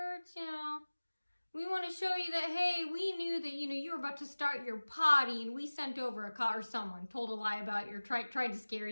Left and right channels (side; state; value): both; inverted; correlation -1.00